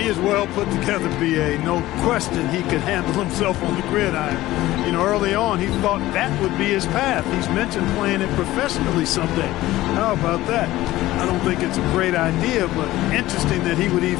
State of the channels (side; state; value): right; quieter; 16.5 dB